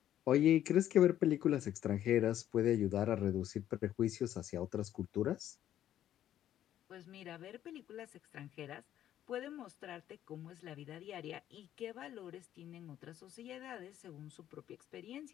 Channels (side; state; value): right; quieter; 11.6 dB